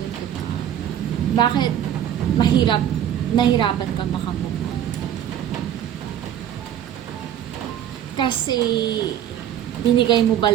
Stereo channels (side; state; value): left; quieter; 10.4 dB